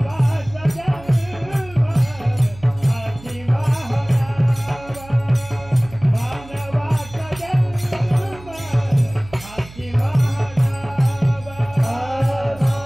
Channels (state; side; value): noise; right; hum, 19 dB below the sound